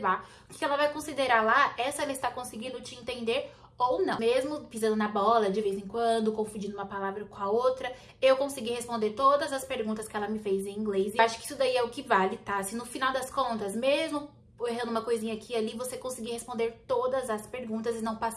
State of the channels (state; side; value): identical; both; correlation 1.00